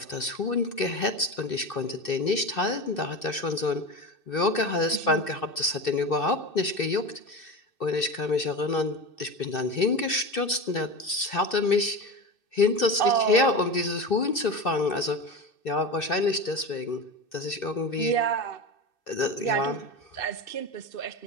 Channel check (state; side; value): late; right; 2.6 ms